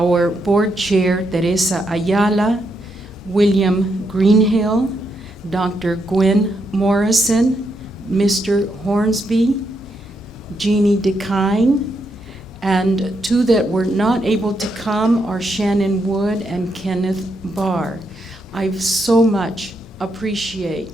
board chair, Teresa Ayala, William Greenhill, Dr. Gwen Morrison, Mr. Hornsby, Jeannie DeKine, and two that were not able to come are Shannon Wood and Kenneth Barr. I so much appreciate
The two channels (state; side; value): normal; both; correlation 0.80